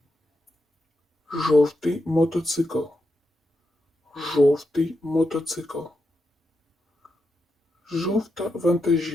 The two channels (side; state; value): both; normal; correlation 0.85